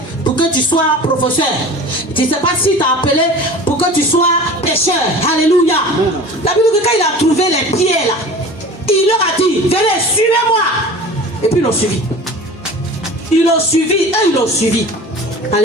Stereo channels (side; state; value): both; normal; correlation 0.39